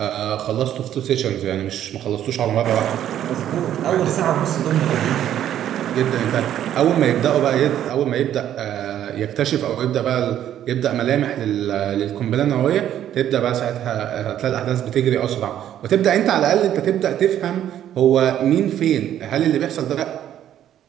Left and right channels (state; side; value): quieter; left; 11.0 dB